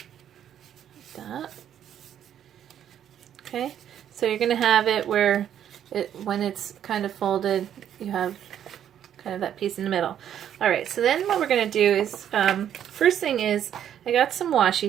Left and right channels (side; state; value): left; quieter; 9.9 dB